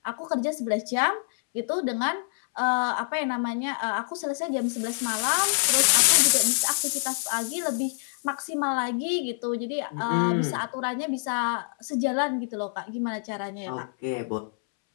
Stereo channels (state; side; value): silent; right; 61 dB below the other